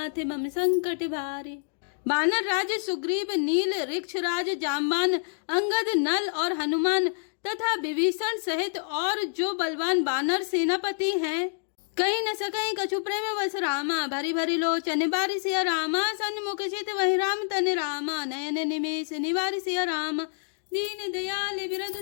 मम संकट भारे। बानर राज सुग्रीव, नील ऋक्षराज, जाम्बान, अंगद, नल और हनुमान तथा विभीषण सहित और जो बलवान बानर सेनापति हैं, कहीं न सकई कछु प्रेम वस रामा। भरी भरी लोचन बारी सिया रामा, सन्मुख चित वही राम तन रामा। नयन निमेष निवारी सिया रामा, दीन दयाल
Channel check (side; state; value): right; silent; digital silence